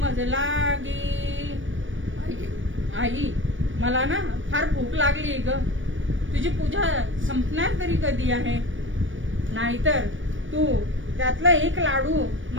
मजलागी. आई मला ना फार भूक लागली ग तुझी पूजा संपणार तरी कधी आहे नाहीतर तू त्यातला एक लाडू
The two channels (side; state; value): left; late; 0.56 ms